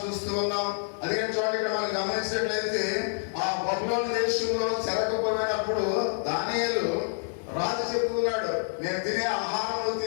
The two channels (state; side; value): silent; right; 59 dB below the other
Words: చూస్తూ ఉన్నాం. అందుకని చూడండి, ఇక్కడ మనం గమనించినట్లయితే ఆ బబులోను దేశంలో చెరకపోయినప్పుడు దానియేలు రాజు చెప్తున్నాడు, నేను తినే ఆహారం